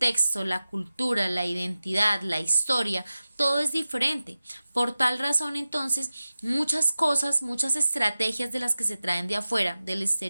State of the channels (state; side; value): inverted; both; correlation -0.95